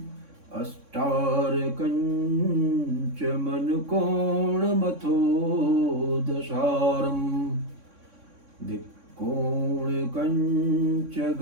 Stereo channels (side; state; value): left; late; 3.6 ms